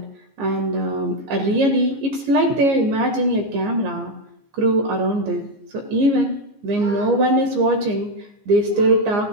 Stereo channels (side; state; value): left; late; 15 ms